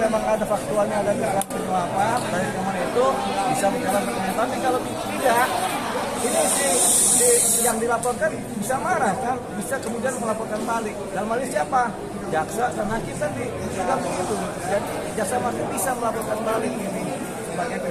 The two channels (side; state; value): both; identical; correlation 1.00